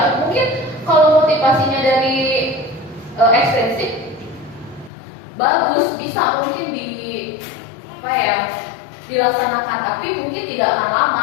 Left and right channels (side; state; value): right; drops out; at 4.9 s